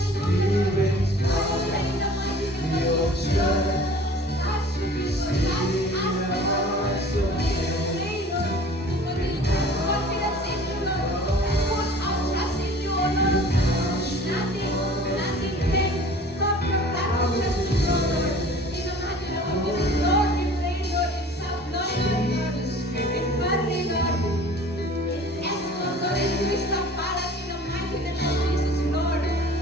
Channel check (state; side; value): normal; both; correlation 0.46